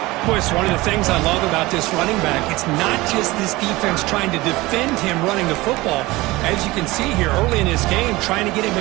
Boy, it's one of the things I love about this running back. It's not just this defense trying to defend him running the football. As you can see here early in this game, trying to get him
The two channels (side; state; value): left; quieter; 20.4 dB